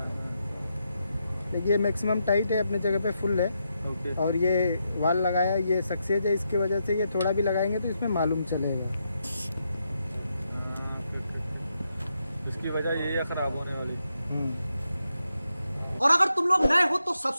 ये मैक्सिमम टाइट है, अपने जगह पे फुल है। ओके। और ये वाल लगाया, ये सक्सेस है, इसकी वजह से ये थोड़ा भी लगाएंगे तो इसमें मालूम चलेगा। इसकी वजह यही है खराब होने वाली। और अगर तुम लोग नए हो तो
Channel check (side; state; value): both; inverted; correlation -0.83